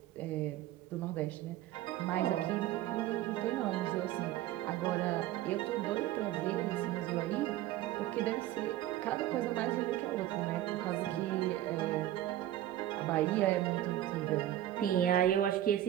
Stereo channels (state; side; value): quieter; left; 13.5 dB